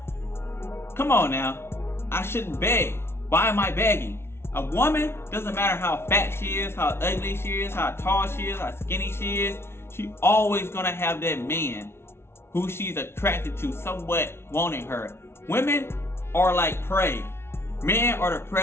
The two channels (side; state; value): right; late; 0.12 ms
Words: Come on now. I shouldn't beg. Why am I begging? A woman, doesn't matter how fat she is, how ugly she is, how tall she is, how skinny she is, she always gonna have that man who she's attracted to somewhat wanting her. Women are like prey. Men are the